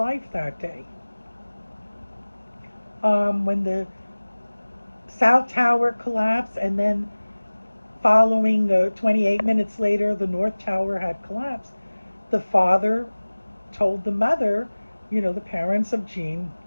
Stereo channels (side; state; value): both; inverted; correlation -1.00